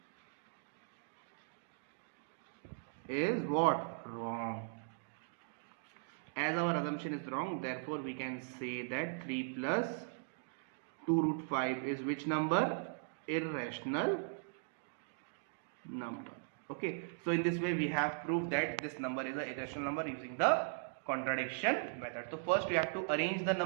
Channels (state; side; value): silent; left; digital silence